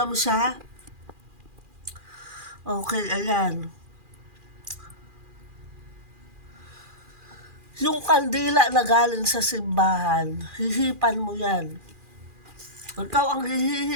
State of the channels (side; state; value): left; late; 2.4 ms